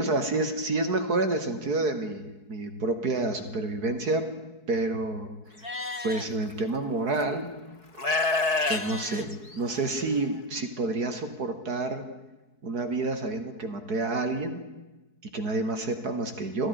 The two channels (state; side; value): late; left; 4.7 ms